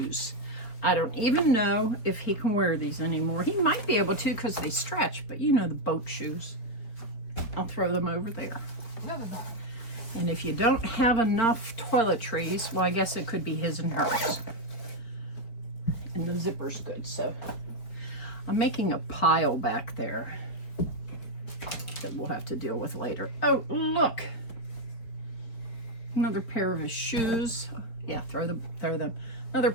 I don't even know if he can wear these anymore. He might be able to because they stretch, but you know the boat shoes. I'll throw them over there. And if you don't have enough toiletries, well, I guess it could be his and hers. And the zipper's good, so I'm making a pile back there that we'll have to deal with later. Oh, look. Another pair of his shoes. Yeah, throw them. Another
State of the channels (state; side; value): late; right; 4.5 ms